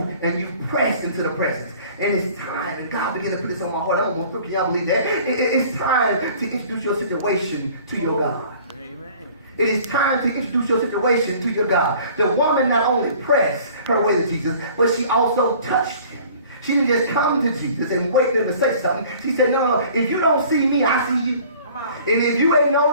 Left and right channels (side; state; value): both; inverted; correlation -0.50